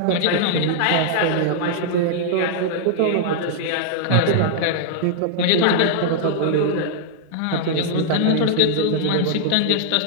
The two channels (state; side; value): different; both; correlation -0.01